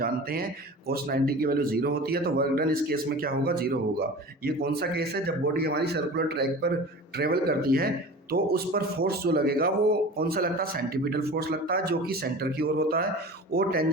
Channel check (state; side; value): normal; both; correlation 0.37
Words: हैं कोस 90 की वैल्यू 0 होती है। तो वर्क डन इस केस में क्या होगा, 0 होगा। ये कौन सा केस है, जब बॉडी हमारी सर्कुलर ट्रैक पर ट्रेवल करती है तो उस पर फोर्स जो लगेगा वो कौन सा लगता है, सेंटीपिटल फोर्स लगता है, जो कि सेंटर की ओर होता है, और